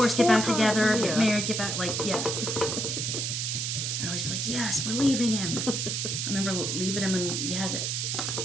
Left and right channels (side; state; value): right; noise; hiss, 1 dB below the sound